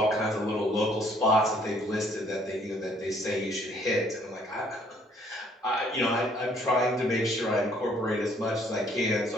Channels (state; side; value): normal; both; correlation 0.63